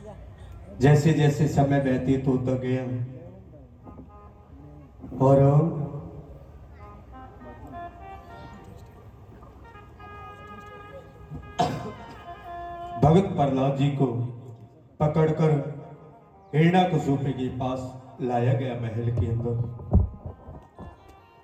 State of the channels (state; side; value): identical; both; correlation 1.00